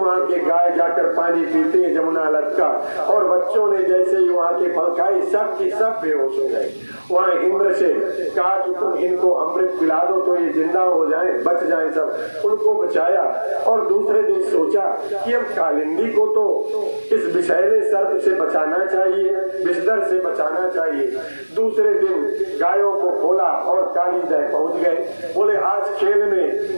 के गाय जाकर पानी पीते हैं जमुना लत का, और बच्चों ने जैसे ही वहाँ के फल खाए सब की सब बेहोश हो गए। वहाँ इंद्र से कहा कि तुम इनको अमृत पिला दो तो ये जिंदा हो जाए, बच जाए सब। उनको बचाया और दूसरे दिन सोचा कि अब कालिंदी को तो इस विषैले सर्प से बचाना चाहिए, विषधर से बचाना चाहिए। दूसरे दिन गायों को खोला और काली दह पहुंच गए। बोले आज खेल में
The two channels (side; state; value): both; inverted; correlation -1.00